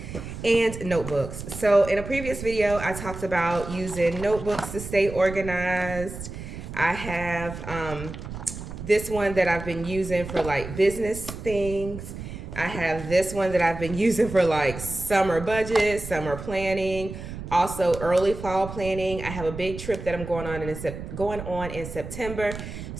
and notebooks. So in a previous video, I talked about using notebooks to stay organized. I have this one that I've been using for like business things. I have this one that I've been using for like summer budget, summer planning, also early fall planning. I have a big trip that I'm going on in September.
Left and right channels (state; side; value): noise; right; rumble, 10 dB below the sound